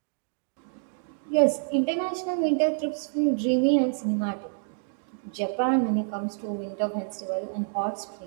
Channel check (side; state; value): left; silent; digital silence